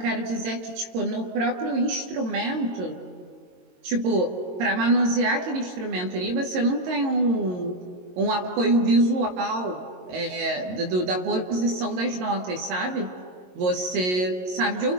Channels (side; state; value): left; late; 22 ms